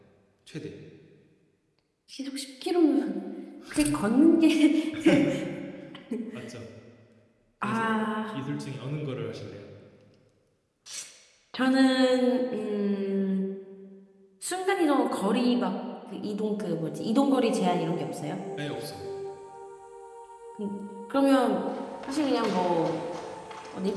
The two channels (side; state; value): both; identical; correlation 1.00